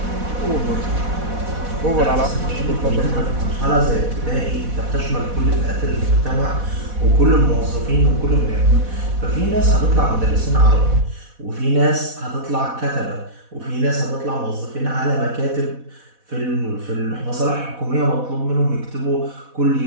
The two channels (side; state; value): left; late; 4.1 ms